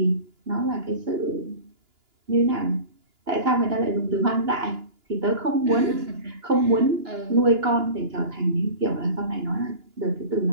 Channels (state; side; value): late; left; 2.9 ms